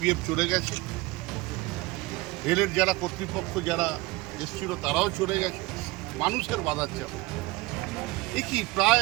চলে গেছে, রেলের যারা কর্তৃপক্ষ যারা এসেছিল তারাও চলে গেছে, মানুষের বাধার চাপে এ কি প্রায়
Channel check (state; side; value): quieter; left; 21.2 dB